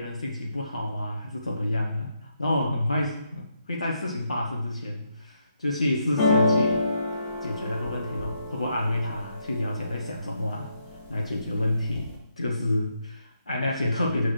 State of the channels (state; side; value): inverted; both; correlation -0.78